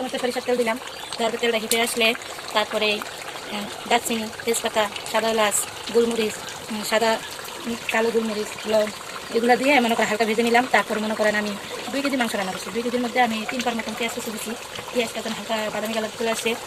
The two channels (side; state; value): both; identical; correlation 1.00